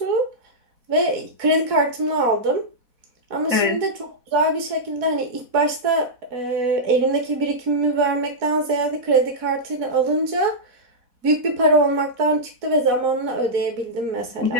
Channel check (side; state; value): left; late; 4.1 ms